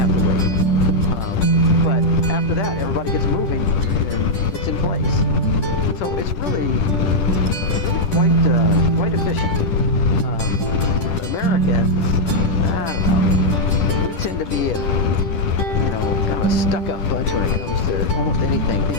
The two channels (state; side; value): late; right; 10 ms